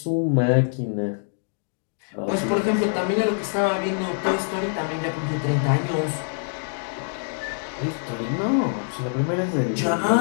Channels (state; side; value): silent; right; digital silence